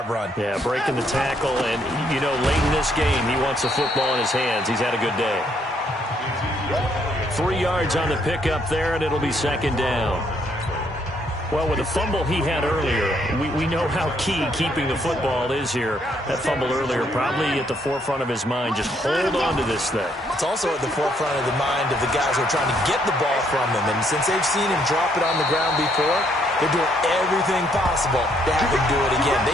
run? Yeah, breaking the tackle, and, you know, late in this game, he wants the football in his hands. He's had a good day. 3 yards on the pickup there, and it'll be second down. Well, with the fumble he had earlier, we know how key keeping the football is here. That fumble earlier probably at the forefront of his mind. Just hold on to this thing. It's also at the forefront of the mind of the guys who are trying to get the ball from him. And since they've seen him drop it on the ground before, they're doing everything possible to have him do it again.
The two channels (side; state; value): both; normal; correlation 0.71